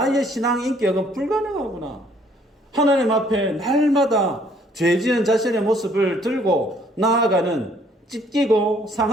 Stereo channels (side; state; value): both; normal; correlation 0.62